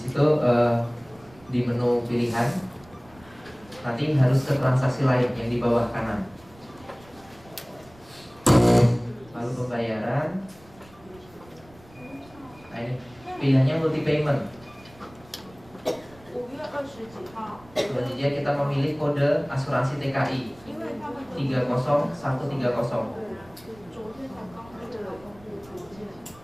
di menu pilihan nanti harus ke transaksi lain yang di bawah kanan. Lalu pembayaran. Nah ini pilihannya multi payment. Selanjutnya kita memilih kode asuransi TKI 30130.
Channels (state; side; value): noise; right; rumble, 25 dB below the sound